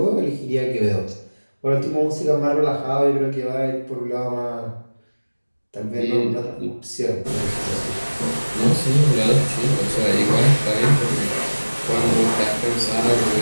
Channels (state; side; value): inverted; both; correlation -1.00